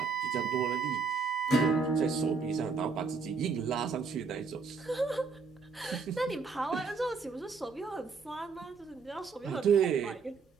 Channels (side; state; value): left; quieter; 4.8 dB